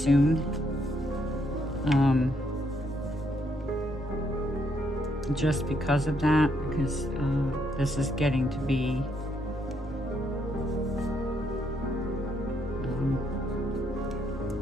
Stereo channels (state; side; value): normal; both; correlation 0.74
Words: just because of that, because this is getting to be